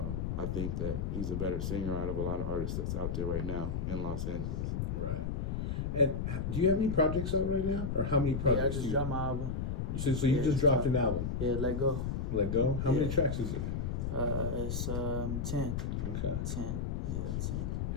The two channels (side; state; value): left; noise; rumble, 1 dB below the sound